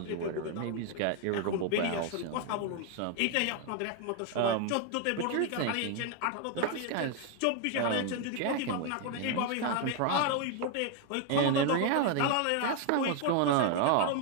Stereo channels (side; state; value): both; different; correlation 0.01